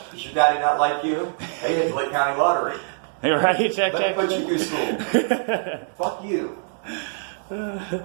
Does your daddy not like you? Hey, hit the Lake County Lottery. Hey, right, check. Let me put you through school. Fuck you.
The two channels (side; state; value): left; silent; digital silence